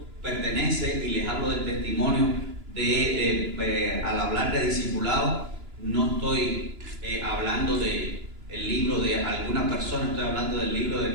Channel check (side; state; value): left; late; 2.9 ms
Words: pertenece, y les hablo del testimonio al hablar de discipulado, no estoy hablando del libro de alguna persona, estoy hablando del libro